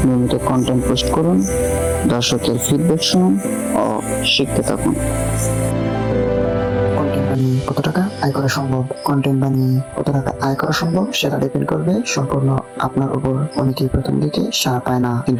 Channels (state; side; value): identical; both; correlation 1.00